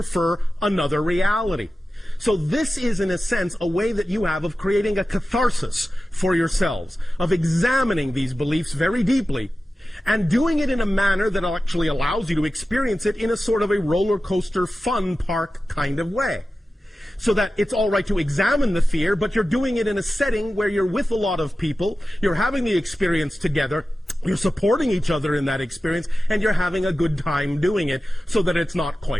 another reality. So this is, in a sense, a way that you have of creating a catharsis for yourselves, of examining these beliefs very deeply, and doing it in a manner that actually allows you to experience it in a sort of a roller coaster fun park kind of way. So that it's all right to examine the fear, but you're doing it in a setting where you're with a lot of people, you're having the experience together, you're supporting each other in that experience, and you're having a good time doing it, so that it's not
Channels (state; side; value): normal; both; correlation 0.94